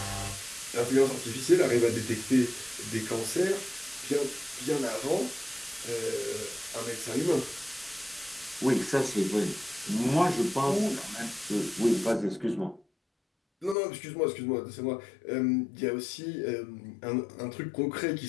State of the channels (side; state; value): right; drops out; at 13.8 s